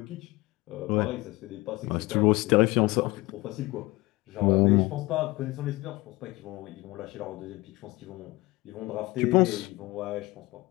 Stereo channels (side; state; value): right; quieter; 21.6 dB